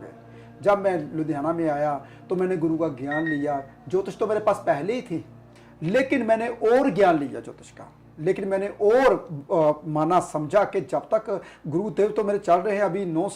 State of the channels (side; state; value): both; identical; correlation 1.00